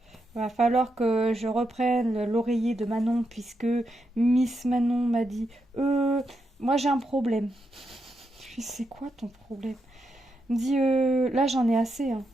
Va falloir que je reprenne l'oreiller de Manon puisque Miss Manon m'a dit moi j'ai un problème. Je lui dis c'est quoi ton problème? Elle me dit là j'en ai assez, hein.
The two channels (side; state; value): both; normal; correlation 0.83